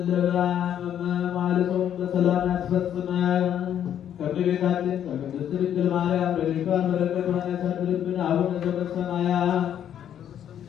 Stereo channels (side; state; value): right; quieter; 9.9 dB